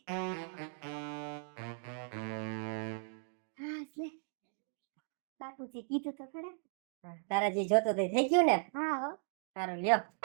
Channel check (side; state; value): left; silent; digital silence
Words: હા લે, બાપુજી કીધું તો ખરા. તારા જે જોતો તે થઈ ગયું ને? હા હો. સારું લ્યો.